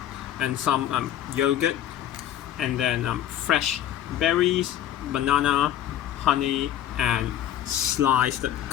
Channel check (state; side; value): quieter; right; 11.5 dB